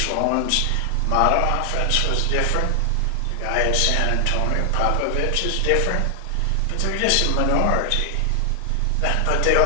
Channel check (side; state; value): both; different; correlation 0.00